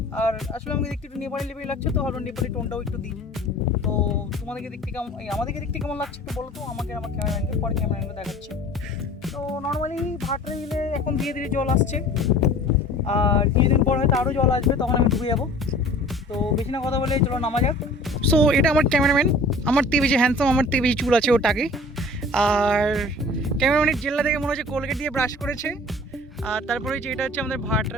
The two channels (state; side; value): normal; both; correlation 0.46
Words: আর আসলে আমাকে দেখতে একটু নেপালি লেভেল লাগছে, তো ভালো নেপালি টোনটাও একটু দিই। তো তোমাদেরকে দেখতে কেমন, আমাদেরকে দেখতে কেমন লাগছে একটু বলো তো আমাকে, আমার ক্যামেরাম্যানকে, পরে ক্যামেরাম্যানকে দেখাচ্ছি। তো নর্মালি ভাটরা বিলে এখন ধীরে ধীরে জল আসছে, আর কিছুদিন পর হয়তো আরও জল আসবে, তখন আমি ডুবে যাবো। তো বেশি না কথা বলে চলো নামা যাক। সো এটা আমার ক্যামেরাম্যান, আমার থেকে বেশি হ্যান্ডসাম, আমার থেকে বেশি চুল আছে ওটাকে। আর ক্যামেরাম্যানের জেল্লা থেকে মনে হচ্ছে কোলগেট দিয়ে ব্রাশ করেছে। আর তারপরে হচ্ছে এটা হচ্ছে আমাদের